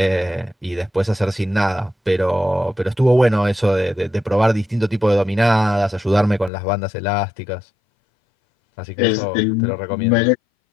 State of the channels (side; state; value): right; drops out; at 6.5 s